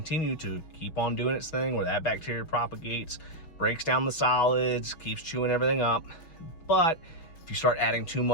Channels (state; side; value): late; right; 6.2 ms